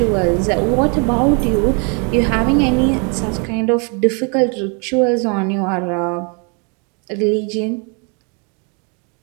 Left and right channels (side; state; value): left; quieter; 35.6 dB